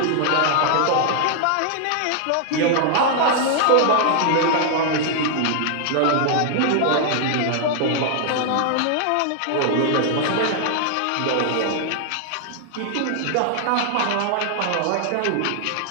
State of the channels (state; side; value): different; both; correlation 0.00